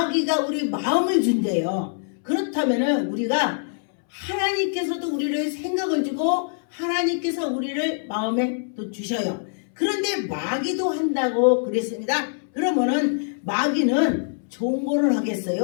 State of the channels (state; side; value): silent; right; 63 dB below the other